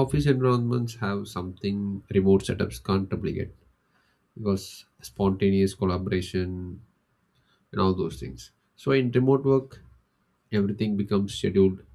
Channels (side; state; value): both; identical; correlation 1.00